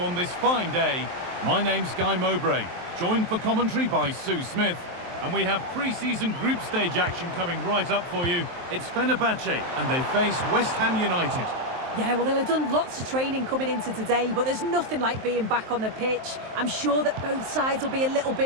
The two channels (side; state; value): left; late; 23 ms